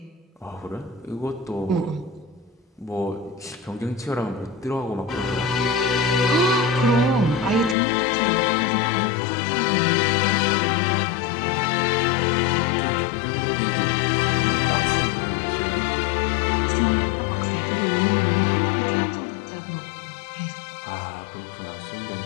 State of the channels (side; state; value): right; drops out; at 7.8 s